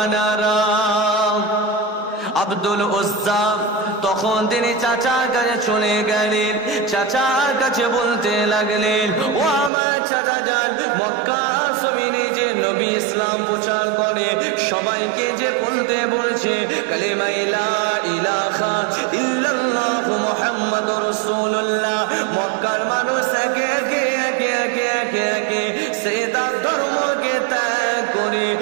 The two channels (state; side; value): drops out; left; at 9.7 s